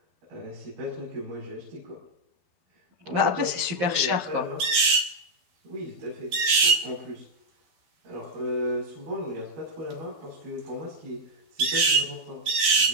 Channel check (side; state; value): left; late; 12 ms